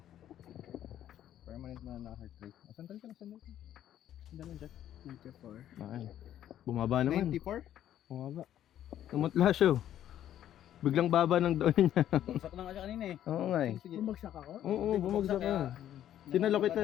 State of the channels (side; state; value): right; quieter; 11.4 dB